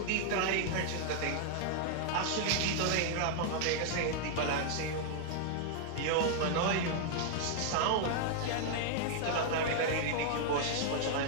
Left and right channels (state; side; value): different; both; correlation 0.00